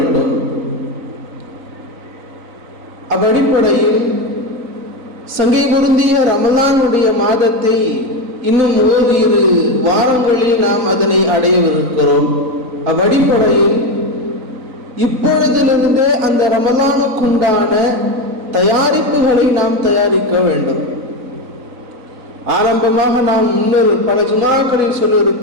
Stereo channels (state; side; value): late; left; 3.9 ms